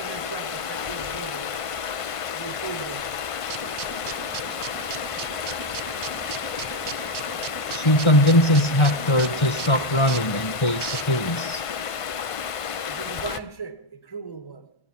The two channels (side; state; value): right; late; 1.5 ms